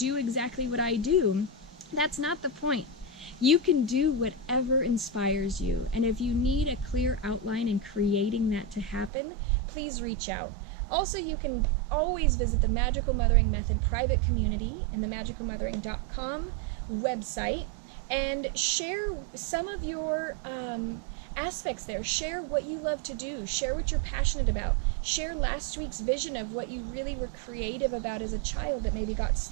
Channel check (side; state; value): left; drops out; at 9.1 s